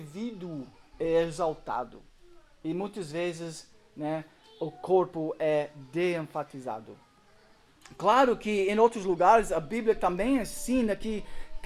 é exaltado e muitas vezes, né, o corpo é de-enfatizado? Claro que em outros lugares a Bíblia também ensina que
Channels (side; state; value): both; identical; correlation 1.00